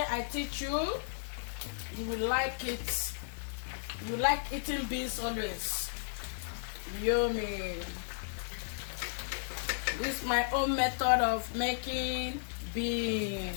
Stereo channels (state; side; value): silent; right; digital silence